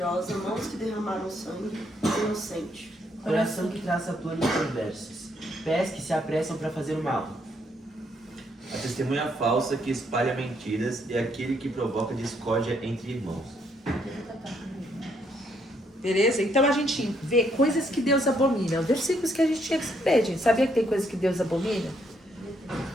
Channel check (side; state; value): both; normal; correlation 0.72